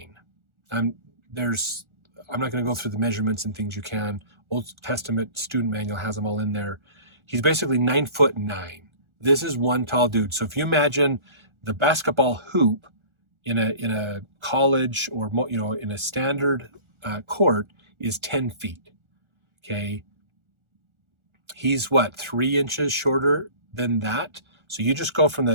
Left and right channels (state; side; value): late; left; 1.4 ms